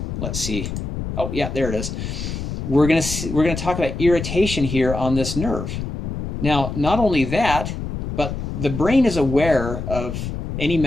let's see. Oh, yeah, there it is. We're going to talk about irritation here on this nerve. Now, not only that, but the brain is aware of any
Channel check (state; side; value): noise; left; rumble, 5 dB below the sound